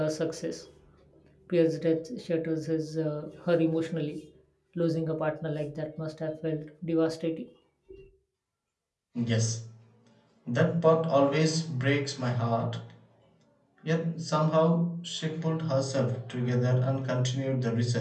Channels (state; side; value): identical; both; correlation 1.00